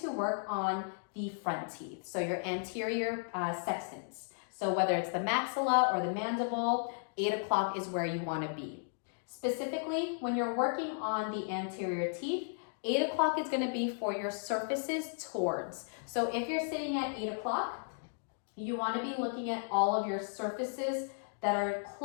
to work on the front teeth, so your anterior sextants. So whether it's the maxilla or the mandible, 8 o'clock is where you wanna be. Specifically, when you're working on the anterior teeth, 8 o'clock is going to be for your surfaces towards. So if you're sitting at 8 o'clock, you want to be looking at all of your surfaces that are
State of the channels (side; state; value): right; silent; digital silence